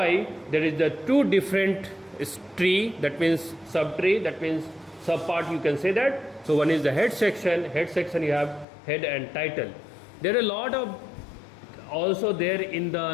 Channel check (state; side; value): drops out; right; at 8.7 s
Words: there is the two different tree, that means subtree, that means subpart, you can say that. So one is the head section you have head and title. There are a lot of also there in